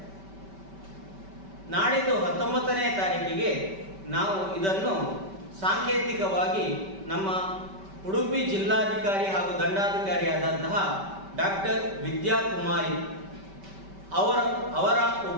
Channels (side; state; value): left; late; 5.2 ms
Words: ನಾಡಿದ್ದು 19ನೇ ತಾರೀಕಿಗೆ ನಾವು ಇದನ್ನು ಸಾಂಕೇತಿಕವಾಗಿ ನಮ್ಮ ಉಡುಪಿ ಜಿಲ್ಲಾಧಿಕಾರಿ ಹಾಗೂ ದಂಡಾಧಿಕಾರಿಯಾದಂತಹ ಡಾಕ್ಟರ್ ವಿದ್ಯಾಕುಮಾರಿ ಅವರ